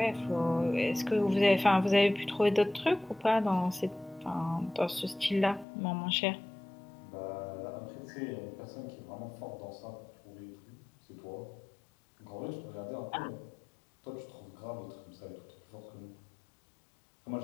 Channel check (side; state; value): right; drops out; at 5.7 s